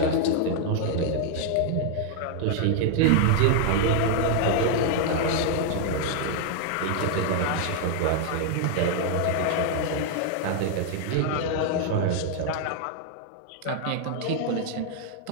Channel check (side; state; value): both; different; correlation 0.00